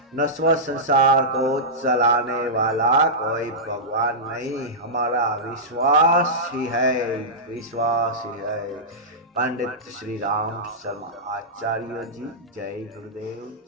नश्वर संसार को चलाने वाला कोई भगवान नहीं, हमारा विश्वास ही है, विश्वास ही है। पंडित श्री राम शर्मा आचार्य जी। जय गुरुदेव,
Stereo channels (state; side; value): normal; both; correlation -0.13